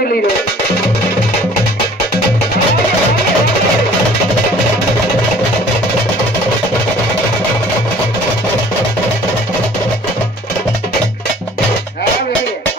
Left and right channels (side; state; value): both; normal; correlation 0.52